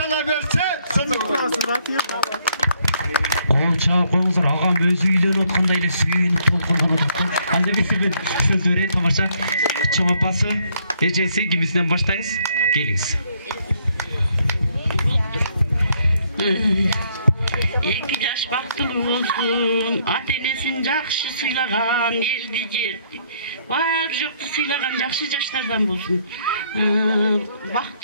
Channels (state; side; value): inverted; both; correlation -0.69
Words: verse Sadık'ın. Çağ koyuңuzдар, ағам өзі үйлөнүп аткандай эле сүйүнүп толкунган отурду. Анда эмесе мен сөз берейин, тамаша. Чоң апасы, эжеси кимисинен баштайбыз? Келиңиз. 2 жаш бактылуу болсун, ата-энесин жакшы сыйлаган, элди жерди, бар жокту сыйлаган жакшы жаштардан болсун.